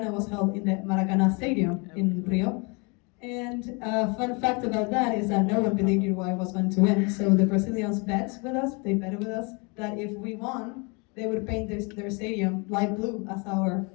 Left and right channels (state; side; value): quieter; right; 31.3 dB